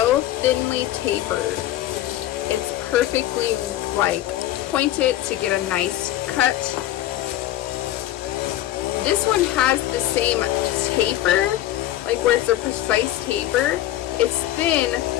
thinly tapered. It's perfectly like pointed to get a nice cut. This one has the same taper, like where it's a precise taper. It's thin,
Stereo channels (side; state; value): right; quieter; 13.8 dB